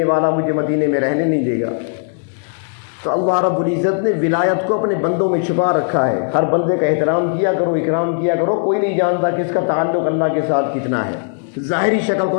والا مجھے مدینے میں رہنے نہیں دے گا۔ تو اللہ رب العزت نے ولایت کو اپنے بندوں میں چھپا رکھا ہے۔ ہر بندے کا احترام کیا کرو، اکرام کیا کرو، کوئی نہیں جانتا کس کا تعلق اللہ کے ساتھ کتنا ہے۔ ظاہری شکل کو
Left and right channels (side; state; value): right; silent; digital silence